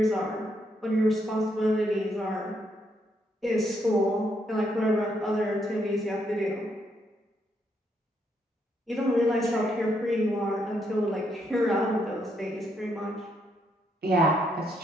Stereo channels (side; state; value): both; normal; correlation 0.75